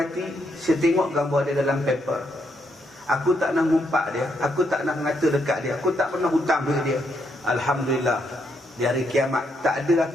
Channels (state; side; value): normal; both; correlation 0.77